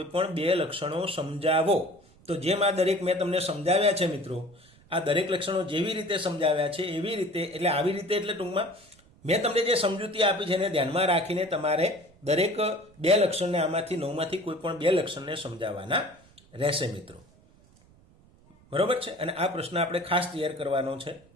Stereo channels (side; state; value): right; noise; rumble, 28 dB below the sound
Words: પણ બે લક્ષણો સમજાવો. તો જેમ આ દરેક મેં તમને સમજાવ્યા છે મિત્રો, આ દરેક લક્ષણો જેવી રીતે સમજાવ્યા છે એવી રીતે, એટલે આવી રીતે એટલે ટૂંકમાં મેં તમને જે સમજૂતી આપી છે એને ધ્યાનમાં રાખીને તમારે દરેક બે લક્ષણને આમાંથી 9માંથી કોઈ પણ બે લક્ષણને સમજાવવાના રહેશે મિત્રો. બરોબર છે? અને આ પ્રશ્ન આપણે ખાસ તૈયાર કરવાનો છે.